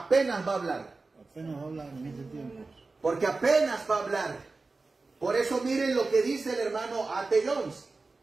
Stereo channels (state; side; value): quieter; left; 3.7 dB